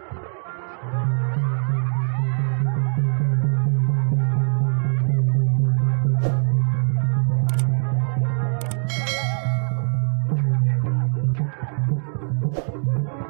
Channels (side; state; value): left; silent; digital silence